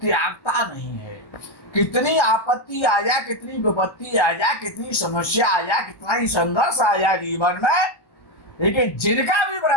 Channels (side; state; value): right; late; 1.3 ms